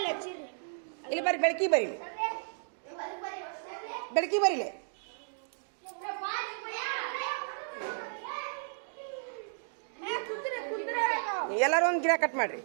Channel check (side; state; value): left; silent; digital silence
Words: ಇಲ್ಲಿ ಬರ್ರಿ ಬೆಳಕಿ ಬರೀಲಿ ಬೆಳಕಿ ಬರೀಲಿ ಎಲ್ಲರೂ ಒಂದು ಗಿಡ ಕಟ್ ಮಾಡ್ರಿ